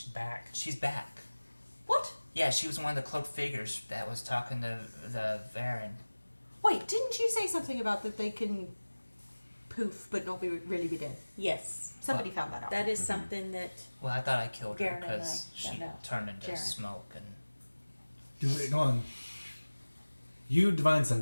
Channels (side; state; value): both; inverted; correlation -1.00